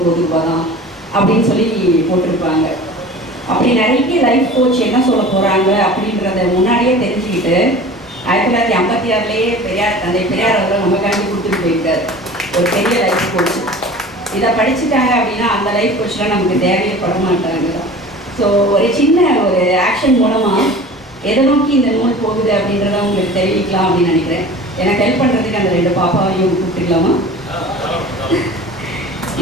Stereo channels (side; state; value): both; normal; correlation 0.40